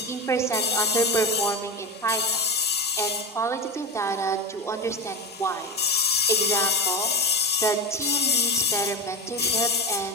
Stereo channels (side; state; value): both; normal; correlation 0.19